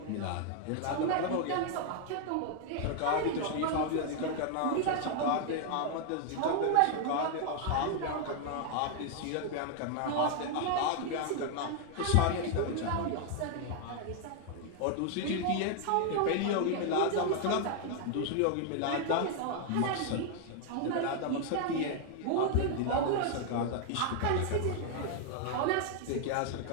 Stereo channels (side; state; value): both; different; correlation 0.00